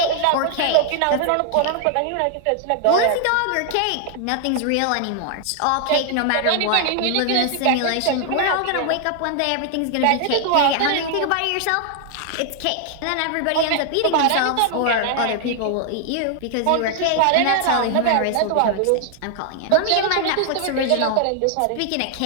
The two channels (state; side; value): different; both; correlation 0.00